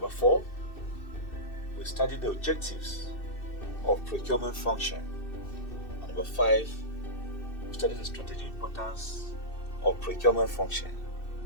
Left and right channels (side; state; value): right; late; 2.6 ms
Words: 4, we study the objectives of procurement function. And number 5, we study the strategic importance of procurement function.